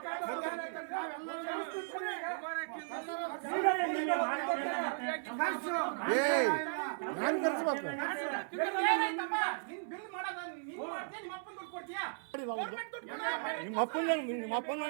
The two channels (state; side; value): silent; left; 54 dB below the other